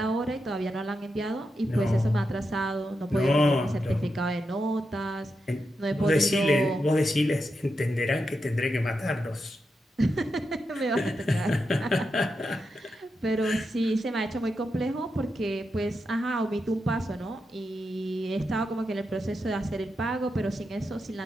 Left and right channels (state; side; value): normal; both; correlation 0.87